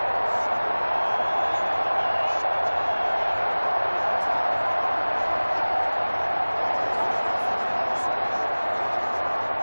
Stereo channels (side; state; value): both; inverted; correlation -1.00